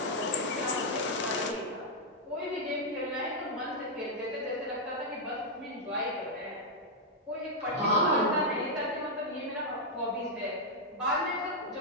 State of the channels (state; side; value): normal; both; correlation -0.03